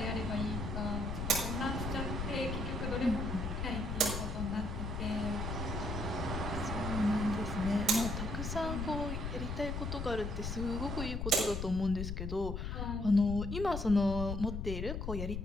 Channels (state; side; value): noise; left; rumble, 4 dB below the sound